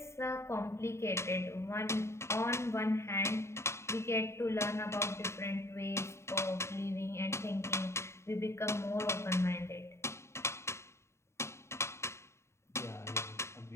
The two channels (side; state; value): right; late; 0.13 ms